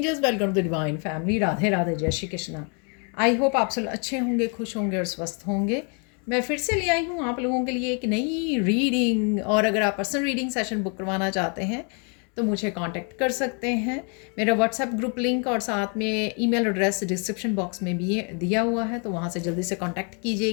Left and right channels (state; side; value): quieter; right; 37.6 dB